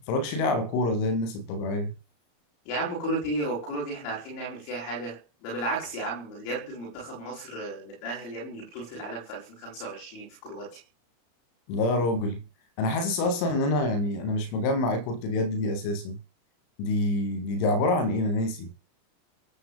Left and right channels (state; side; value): late; right; 35 ms